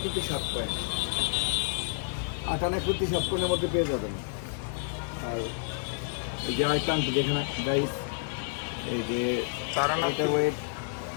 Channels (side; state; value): right; silent; 58 dB below the other